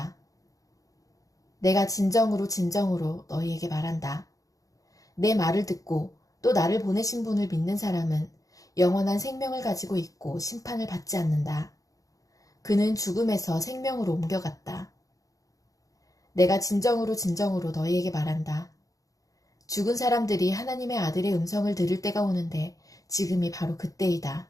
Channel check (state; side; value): late; right; 0.17 ms